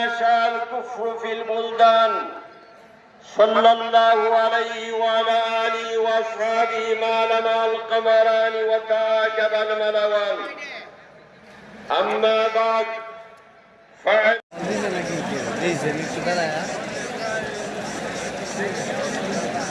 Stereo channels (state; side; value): identical; both; correlation 1.00